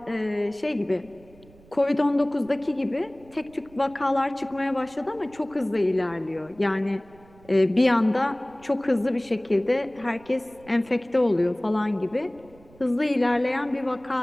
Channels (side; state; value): right; noise; rumble, 25 dB below the sound